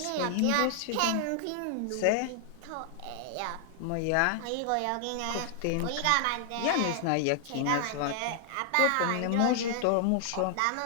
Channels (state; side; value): different; both; correlation 0.00